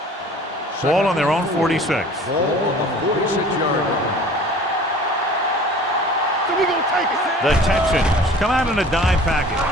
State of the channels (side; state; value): both; normal; correlation 0.46